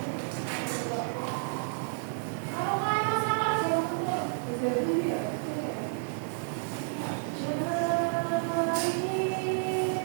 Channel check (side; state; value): left; silent; digital silence